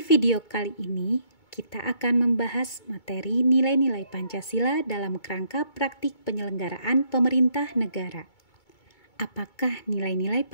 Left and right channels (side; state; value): right; late; 2.2 ms